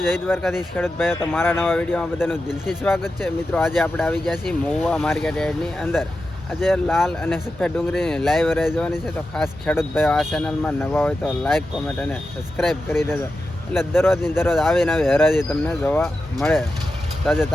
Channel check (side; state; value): both; normal; correlation 0.91